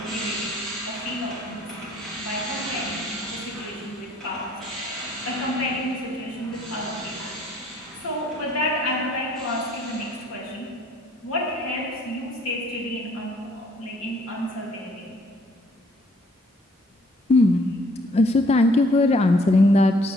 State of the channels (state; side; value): normal; both; correlation 0.60